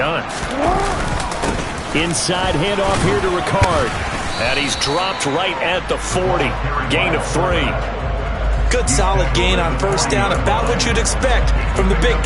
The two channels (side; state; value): both; identical; correlation 1.00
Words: Inside handoff here to Ricard. And he's dropped right at the 40. Gain of 3. Good solid gain on 1st down. About what you'd expect from the big